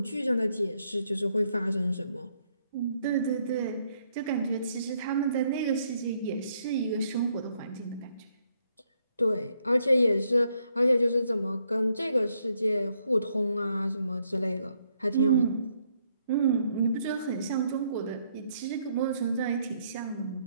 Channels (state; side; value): inverted; both; correlation -0.73